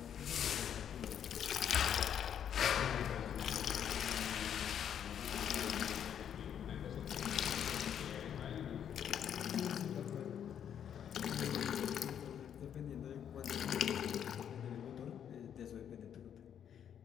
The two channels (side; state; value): right; quieter; 9.0 dB